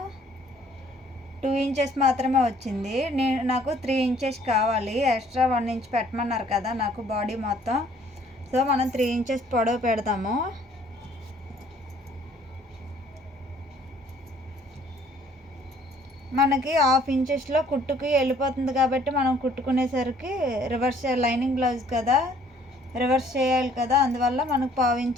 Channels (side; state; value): both; normal; correlation 0.59